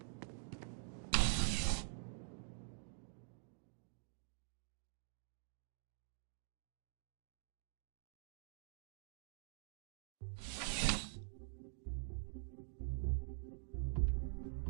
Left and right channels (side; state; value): left; silent; digital silence